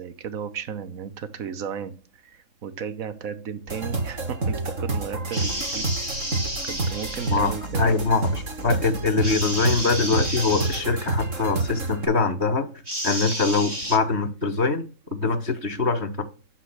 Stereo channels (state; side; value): late; left; 3.7 ms